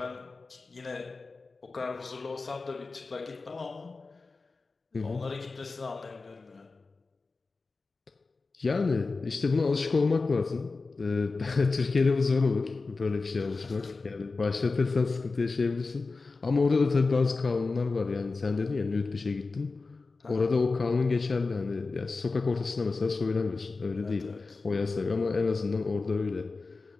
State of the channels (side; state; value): right; quieter; 3.9 dB